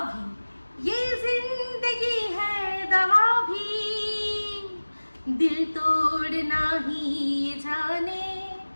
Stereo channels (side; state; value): both; inverted; correlation -1.00